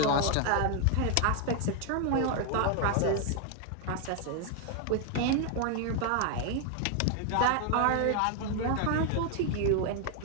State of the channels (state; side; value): different; both; correlation 0.00